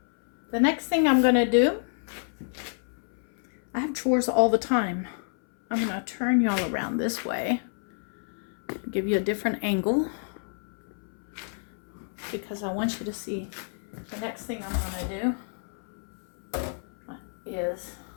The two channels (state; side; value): silent; right; 59 dB below the other